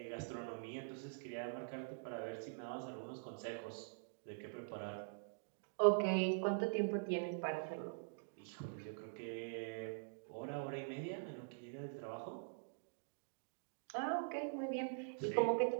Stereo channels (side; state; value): left; silent; digital silence